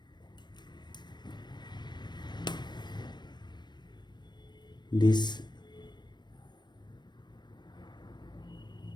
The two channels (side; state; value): right; late; 0.21 ms